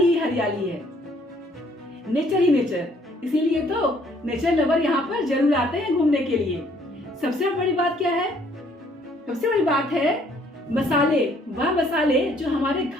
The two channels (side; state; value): both; normal; correlation 0.63